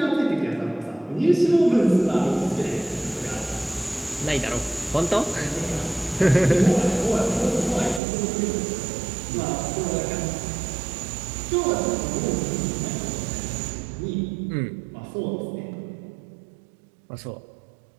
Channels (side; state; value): left; drops out; at 8.0 s